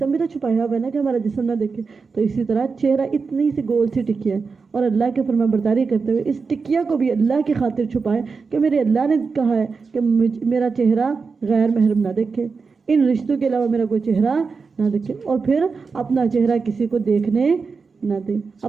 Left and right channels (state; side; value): quieter; left; 4.9 dB